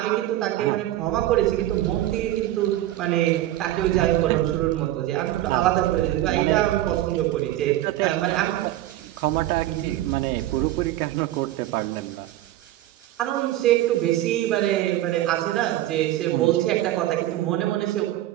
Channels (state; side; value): quieter; left; 14.6 dB